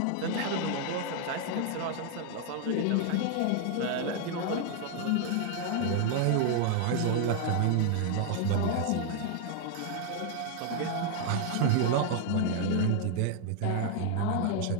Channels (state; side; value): different; both; correlation 0.00